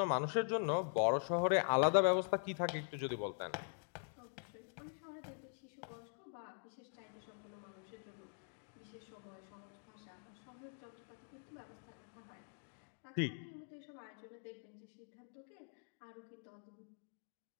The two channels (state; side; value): silent; right; digital silence